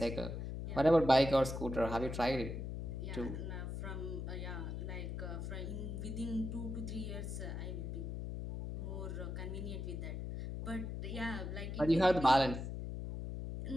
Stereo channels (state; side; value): noise; left; hum, 5 dB below the sound